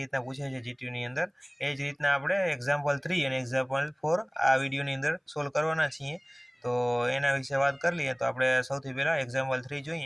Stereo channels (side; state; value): both; identical; correlation 1.00